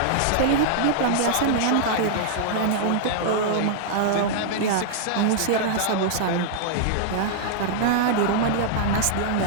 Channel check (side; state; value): both; different; correlation -0.01